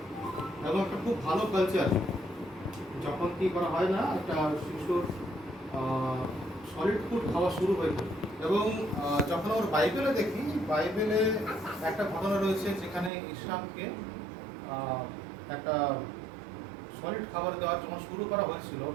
এবং একটা খুব ভালো কালচার। যখন কি করা হয় না, একটা শিশুর সলিড ফুড খাওয়া শুরু হয়ে যায়। এবং যখন আমরা বাইবেলে দেখি, বাইবেলে একটা ঘটনা রয়েছে যেখানে ইসহাককে একটা সলিড খাবার দেওয়ার যখন শুরু করা হয়েছিল,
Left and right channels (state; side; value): drops out; left; at 13.1 s